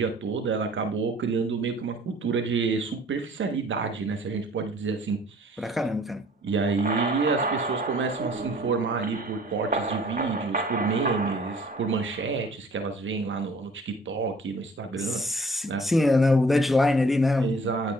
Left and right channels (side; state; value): both; normal; correlation 0.54